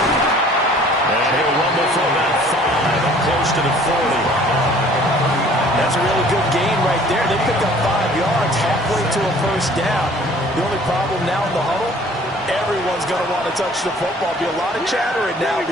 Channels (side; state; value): both; normal; correlation 0.53